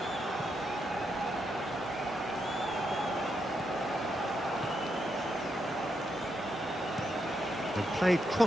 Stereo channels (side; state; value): both; normal; correlation 0.81